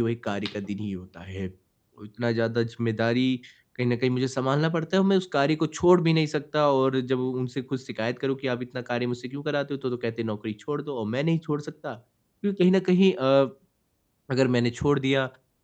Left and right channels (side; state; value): both; identical; correlation 1.00